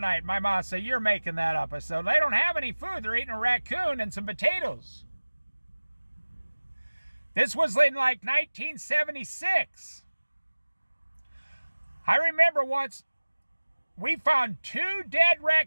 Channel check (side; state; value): both; inverted; correlation -1.00